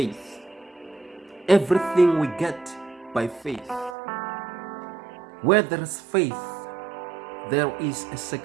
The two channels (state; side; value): drops out; left; at 4.0 s